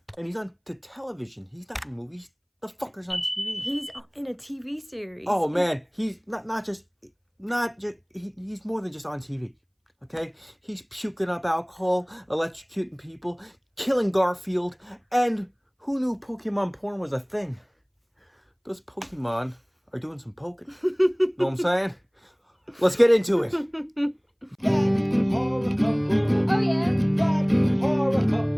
and he's on the television. He's not in movies. The fucker's on TV. He's in a TV series. Oh man, he's he's more than just on TV. Okay, he's puking up alcohol, electrocuting people, killing Garfield, and who knew Pokemon porn was a thing? Those Pokemon are doing some poking. Know what I'm saying? Let's get into it. That horror couple. Oh yeah, That horror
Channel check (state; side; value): identical; both; correlation 1.00